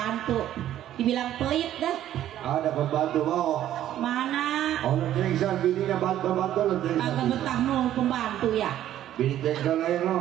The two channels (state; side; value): quieter; left; 12.1 dB